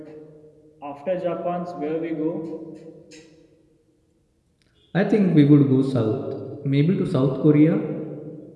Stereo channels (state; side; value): identical; both; correlation 1.00